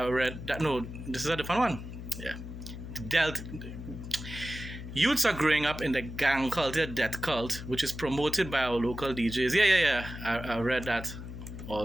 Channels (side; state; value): left; noise; hum, 10 dB below the sound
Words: that. No, this is a different one. Yeah. Youths are growing up in the gang culture, death cult, which is promoted by our local DJs. Yeah. I read that